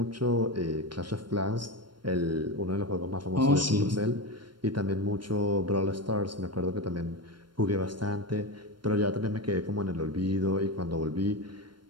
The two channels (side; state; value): left; late; 0.72 ms